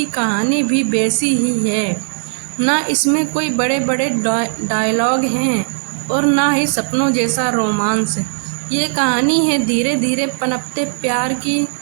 कहानी भी वैसी ही है। ना इसमें कोई बड़े बड़े डायलॉग हैं और ना ही सपनों जैसा रोमांस। ये कहानी है धीरे धीरे पनपते प्यार की,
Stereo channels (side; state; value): left; silent; 65 dB below the other